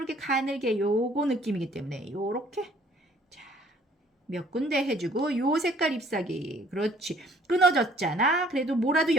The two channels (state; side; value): normal; both; correlation 0.58